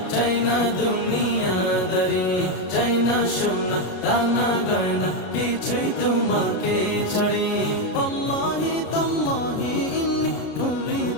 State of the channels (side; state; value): right; late; 33 ms